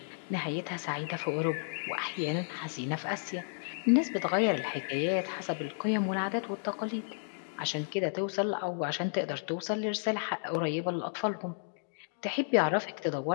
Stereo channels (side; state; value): right; silent; digital silence